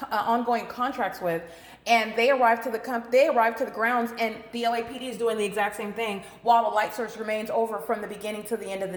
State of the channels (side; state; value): both; identical; correlation 1.00